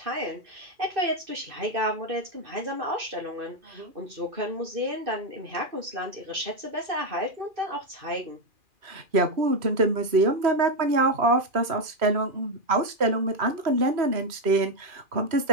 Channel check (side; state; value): left; late; 2.4 ms